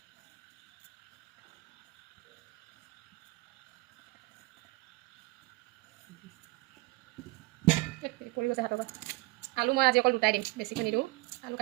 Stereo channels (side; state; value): left; quieter; 22.9 dB